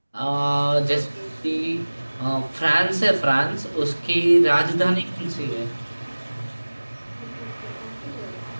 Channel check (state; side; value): inverted; both; correlation -1.00